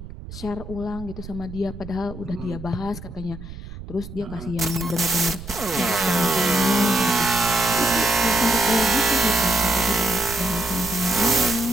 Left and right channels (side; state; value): right; noise; rumble, 13 dB below the sound